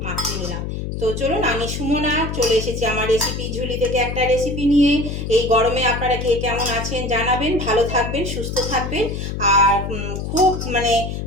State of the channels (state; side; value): noise; left; hum, 5 dB below the sound